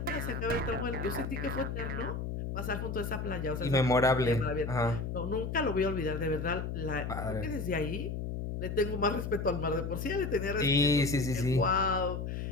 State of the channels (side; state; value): left; noise; hum, 4 dB below the sound